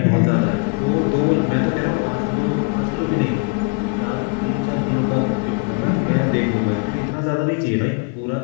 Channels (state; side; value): quieter; right; 34.7 dB